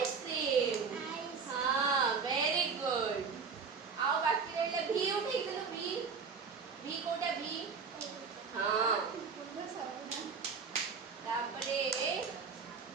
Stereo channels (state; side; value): quieter; left; 5.4 dB